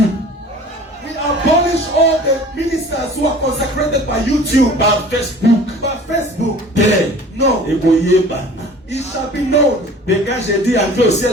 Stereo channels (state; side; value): normal; both; correlation 0.45